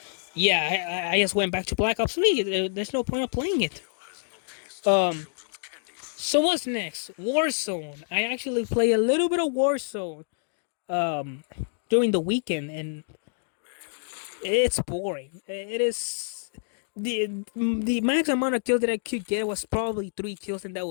yeah, I just went back to Black Ops 3. There's no point of playing it. Um, so what's next? Warzone. I actually play a little bit of Warzone during the weekend, and it's boring. It is the max amount of kills that I could get was probably 3 kills, and that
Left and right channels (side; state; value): right; silent; digital silence